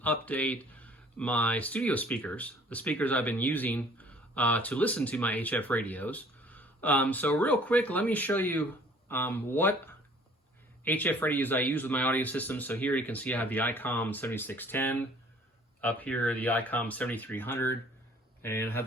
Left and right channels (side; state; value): both; normal; correlation 0.54